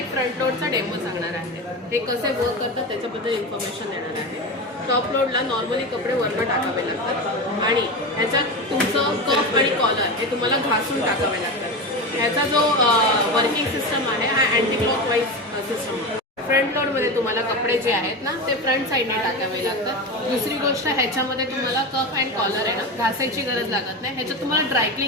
फ्रंट लोडचा डेमो सांगणार आहे। हे कसे वर्क करतात त्याच्याबद्दल इन्फॉर्मेशन देणार आहे। टॉप लोडला नॉर्मली कपडे वरनं टाकावे लागतात आणि ह्याच्यात तुमचं कफ आणि कॉलर हे तुम्हाला घासून टाकावे लागतात। ह्याचा जो वर्किंग सिस्टम आहे हा अँटी क्लॉकवाईज सिस्टम आहे। फ्रंट लोडमध्ये तुम्हाला कपडे जे आहेत ना ते फ्रंट साईडने टाकावे लागतात। दुसरी गोष्ट ह्याच्यामध्ये तुम्हाला कफ अँड कॉलर आहे ना घासायची गरज लागत नाही। ह्याच्यात तुम्हाला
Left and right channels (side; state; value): both; normal; correlation 0.22